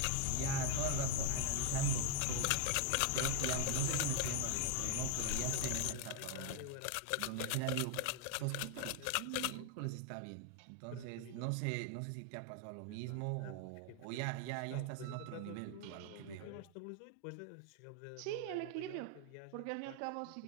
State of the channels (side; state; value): both; different; correlation 0.00